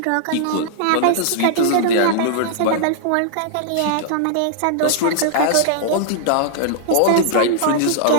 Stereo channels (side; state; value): both; different; correlation -0.01